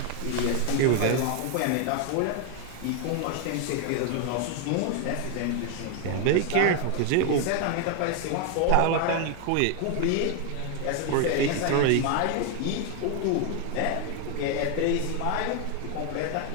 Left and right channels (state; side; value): different; both; correlation 0.01